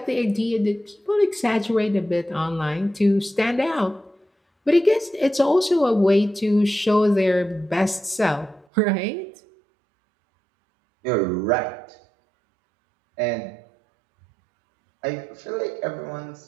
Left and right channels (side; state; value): left; drops out; at 8.7 s